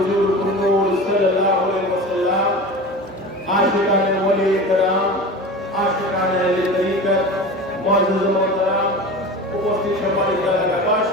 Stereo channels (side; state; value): both; normal; correlation 0.32